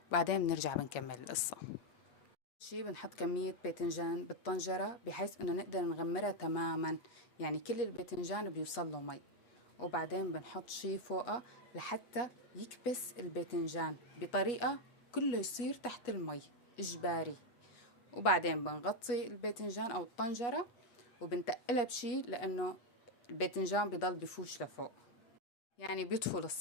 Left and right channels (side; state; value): right; late; 8.3 ms